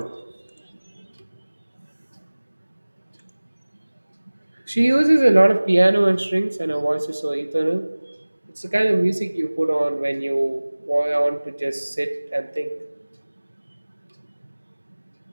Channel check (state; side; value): inverted; both; correlation -1.00